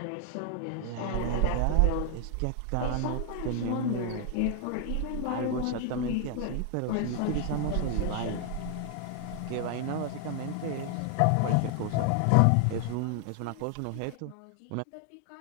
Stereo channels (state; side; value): different; both; correlation 0.00